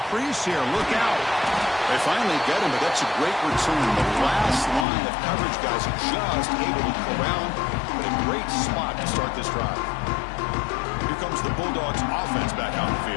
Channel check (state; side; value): drops out; right; at 4.9 s